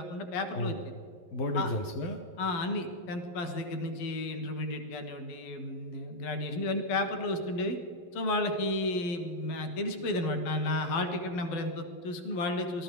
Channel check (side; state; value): right; late; 11 ms